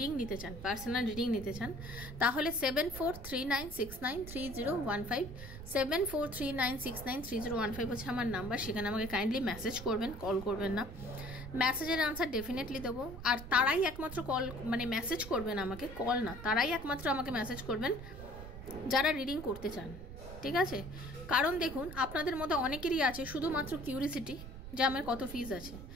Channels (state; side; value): noise; right; rumble, 12 dB below the sound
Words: নিতে চান, পার্সোনাল রিডিং নিতে চান, তাহলে 7439693015 7439693015 হচ্ছে আমার নাম্বার। সেখানে আমাকে কাইন্ডলি মেসেজ করবেন, কল করবেন না। মেসেজের আনসার ডেফিনেটলি দেবো। আর তারাই একমাত্র কল মেসেজ করবেন আমাকে, কল না, তারাই একমাত্র আমাকে মেসেজ করবেন যারা রিডিং করতে চান, ঠিক আছে? কারণ দেখুন, আপনাদের মধ্যে অনেকেরই আছে শুধুমাত্র কিউরিসিটি যে আমার কত ফিজ আছে।